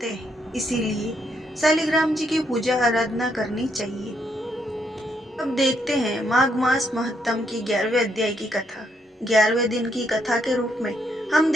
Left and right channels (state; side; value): normal; both; correlation 0.75